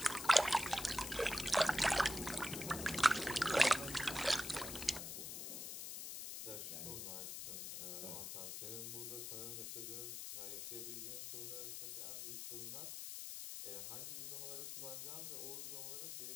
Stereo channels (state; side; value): noise; left; hiss, 6 dB below the sound